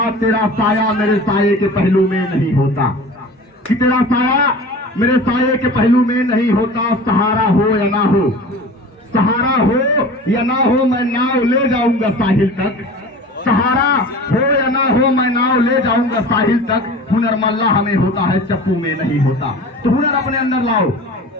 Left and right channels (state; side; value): normal; both; correlation 0.38